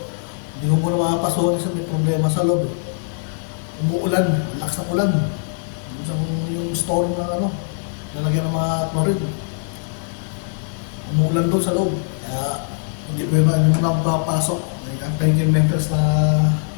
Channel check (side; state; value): right; silent; 64 dB below the other